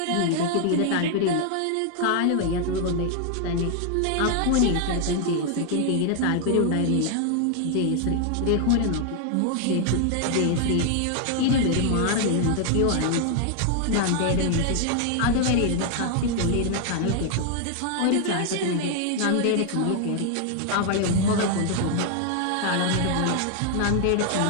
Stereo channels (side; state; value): both; different; correlation 0.00